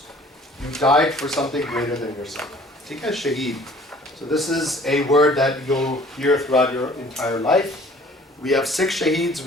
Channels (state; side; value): normal; both; correlation 0.52